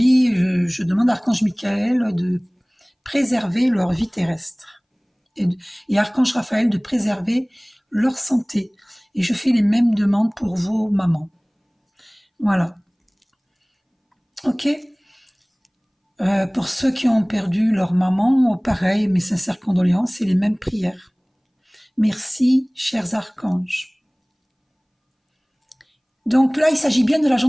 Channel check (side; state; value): both; identical; correlation 1.00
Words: je demande à Archange Michael de préserver leur vie terrestre. Et Archange Raphaël de préserver leur santé. Et je fais les mêmes demandes pour vos mamans. Voilà. Ok. Pour ceux qui ont perdu leur maman, pareil, mes sincères condoléances et les mêmes prières. Merci, chers archanges. Donc là, il s'agit bien de la